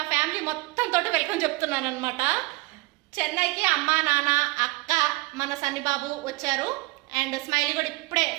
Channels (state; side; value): quieter; left; 23.3 dB